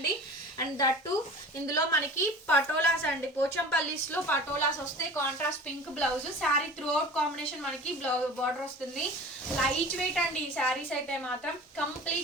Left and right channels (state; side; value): normal; both; correlation 0.39